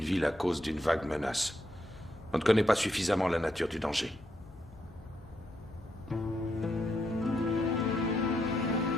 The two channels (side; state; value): both; normal; correlation 0.79